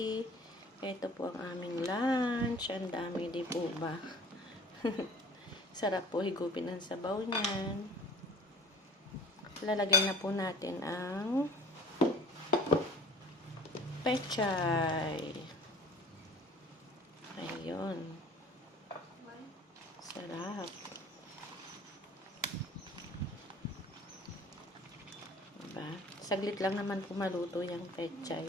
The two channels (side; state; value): both; normal; correlation 0.46